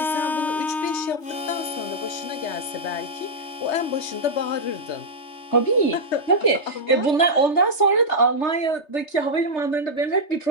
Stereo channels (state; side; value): late; right; 3.3 ms